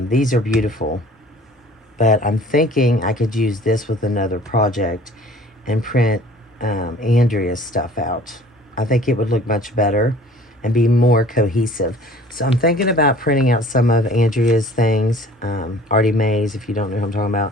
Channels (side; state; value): both; normal; correlation 0.49